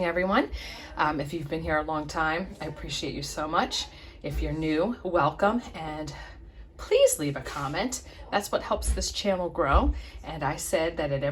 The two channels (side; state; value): both; identical; correlation 1.00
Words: everyone. If you've been here a long time, I appreciate you so much. If you're new, welcome, and please leave a comment. That's what helps this channel grow. And I said that at